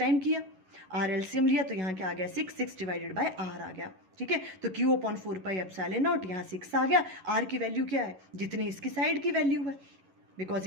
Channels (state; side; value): late; left; 11 ms